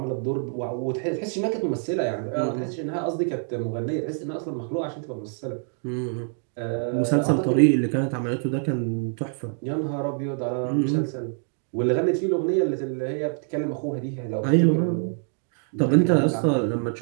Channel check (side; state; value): left; silent; 61 dB below the other